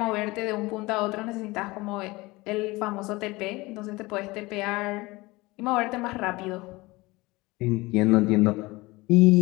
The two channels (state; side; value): quieter; right; 21.9 dB